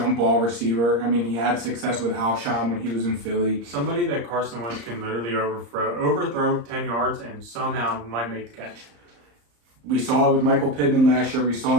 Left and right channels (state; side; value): late; left; 34 ms